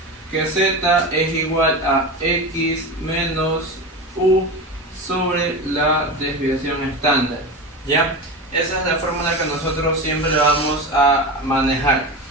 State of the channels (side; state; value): both; normal; correlation 0.25